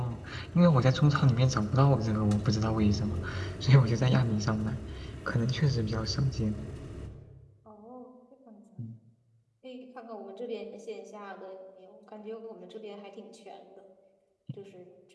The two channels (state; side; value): identical; both; correlation 1.00